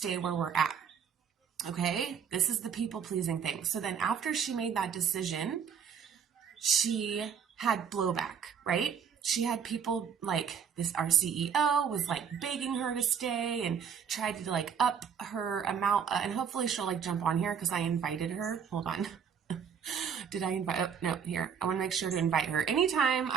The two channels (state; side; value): quieter; left; 7.4 dB